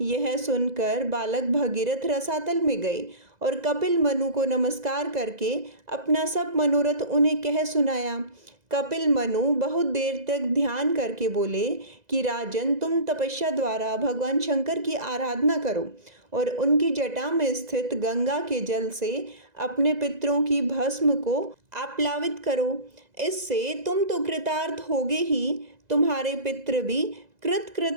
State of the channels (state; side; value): late; left; 2.0 ms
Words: यह सुनकर बालक भगीरथ रसातल में गए और कपिल मनु को नमस्कार करके अपना सब मनोरथ उन्हें कह सुनाया। कपिल मनु बहुत देर तक ध्यान करके बोले कि राजन, तुम तपस्या द्वारा भगवान शंकर की आराधना करो और उनकी जटा में स्थित गंगा के जल से अपने पितरों की भस्म को आप्लावित करो। इससे तुम तो कृतार्थ होगे ही, तुम्हारे पितृ भी